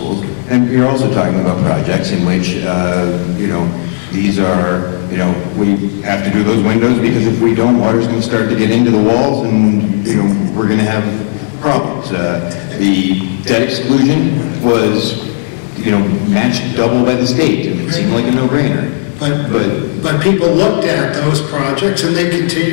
And you're also talking about projects in which, these are, we have to do those windows because if we don't, water's going to start to get into the walls and, we're going to have problems. The debt exclusion was, matched double by the state, and it seemed like a no-brainer. But people looked at those projects and they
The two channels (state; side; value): silent; right; digital silence